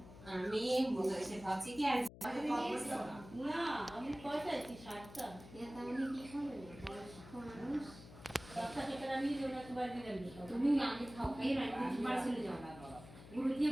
সে ভাবছি কি আর না আমি পয়সাইছি 60টা তাহলে কি হবে মানুষ বাচ্চাটা নিয়ে যাবো একবার দিলেন তুমি আগে খাও খাই রান্না পার্সেলে যাও না গুরু দিয়ে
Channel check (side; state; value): left; noise; hum, 17 dB below the sound